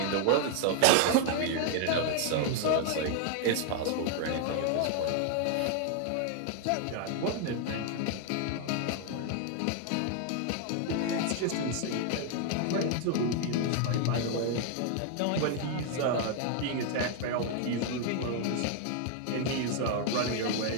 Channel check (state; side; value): different; both; correlation 0.00